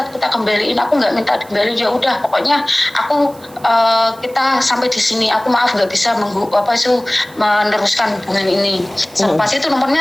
kembaliin, aku nggak minta kembaliin, ya udah pokoknya aku kita sampai di sini, aku maaf nggak bisa meneruskan hubungan ini. Selepas itu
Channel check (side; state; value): right; noise; hiss, 24 dB below the sound